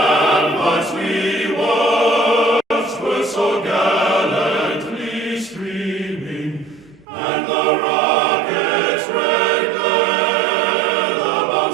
we watched were so gallantly streaming, and the rocket's red glare, the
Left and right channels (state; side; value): drops out; left; at 7.1 s